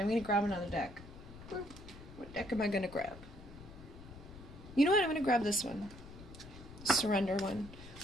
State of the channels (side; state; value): left; noise; rumble, 16 dB below the sound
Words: going to grab another deck. What deck am I going to grab? You know what? I'm going to grab this one. Surrender one.